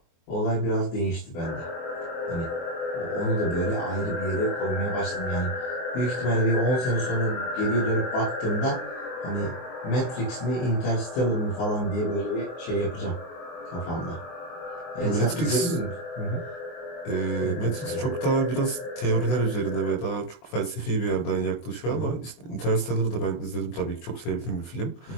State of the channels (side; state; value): right; late; 24 ms